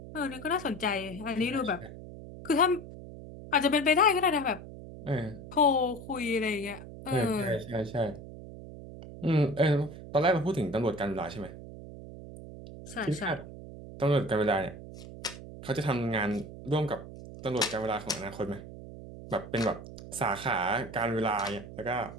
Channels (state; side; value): noise; right; hum, 13 dB below the sound